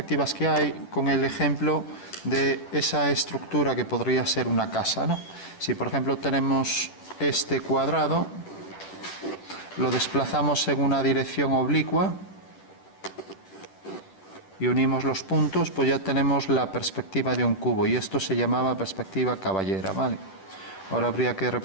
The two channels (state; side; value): late; right; 10 ms